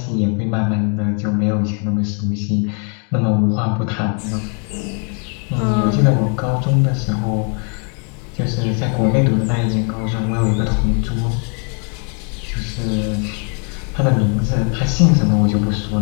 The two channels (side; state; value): right; quieter; 39.4 dB